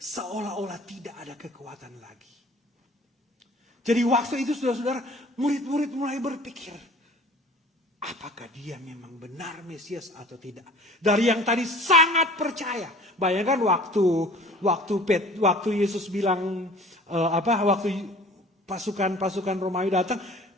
tidak ada kekuatan lagi. Jadi waktu itu saudara-saudara, murid-murid mulai berpikir, apakah dia memang benar Mesias atau tidak? Dari yang tadi sangat percaya. Bayangkan waktu Yesus bilang waktu pasukan Romawi datang,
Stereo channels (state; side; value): normal; both; correlation 0.47